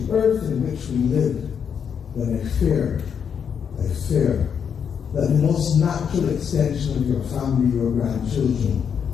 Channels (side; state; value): right; quieter; 7.4 dB